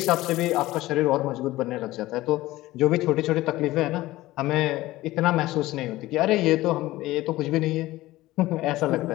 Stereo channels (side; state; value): right; quieter; 17.4 dB